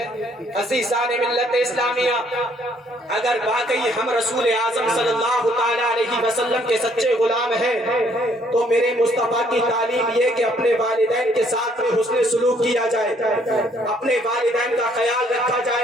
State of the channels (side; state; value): both; normal; correlation 0.65